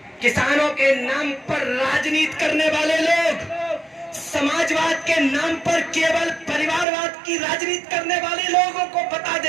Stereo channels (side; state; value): left; drops out; at 6.9 s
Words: किसानों के नाम पर राजनीति करने वाले लोग समाजवाद के नाम पर केवल परिवारवाद की राजनीति करने वाले लोगों को बता